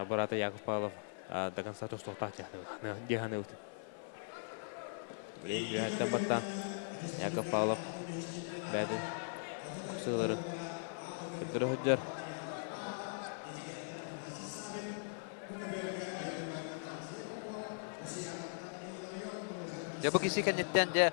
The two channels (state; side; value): silent; right; 51 dB below the other